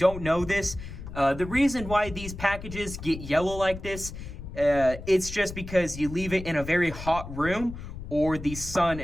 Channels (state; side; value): noise; left; rumble, 11 dB below the sound